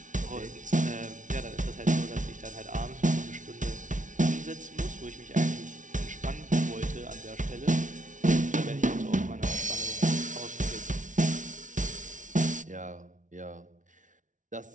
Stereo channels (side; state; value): left; late; 0.37 ms